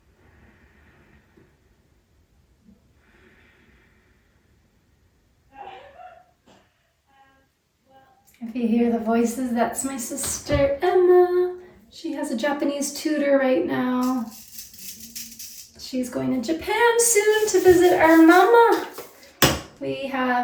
If you hear the voices, that's my sister Emma. She has a Japanese tutor right now. She's going to Japan soon to visit our mama. We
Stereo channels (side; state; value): both; identical; correlation 1.00